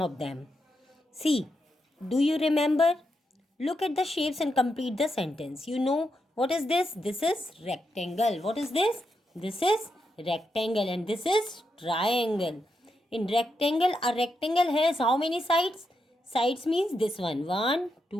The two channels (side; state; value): both; normal; correlation 0.84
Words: of them. See, do you remember? Look at the shapes and complete the sentence. You know what is this? This is rectangle. What is this? This is rectangle and this is triangle. In rectangle, a rectangle has how many sides? Sides means this one. 1,